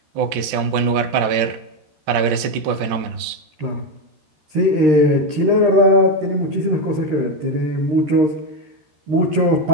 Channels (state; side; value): late; left; 13 ms